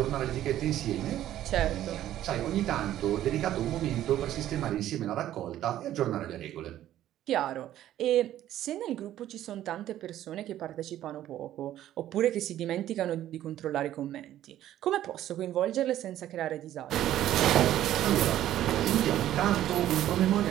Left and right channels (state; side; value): quieter; left; 12.7 dB